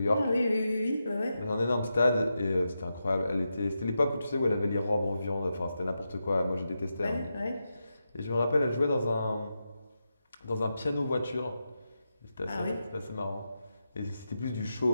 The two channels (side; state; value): both; inverted; correlation -0.88